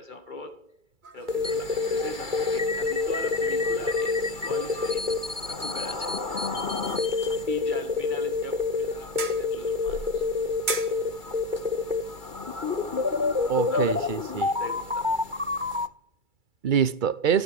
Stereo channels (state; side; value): late; left; 2.3 ms